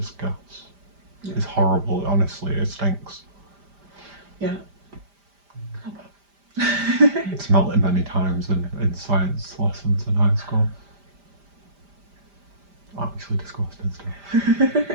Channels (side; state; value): left; late; 5.0 ms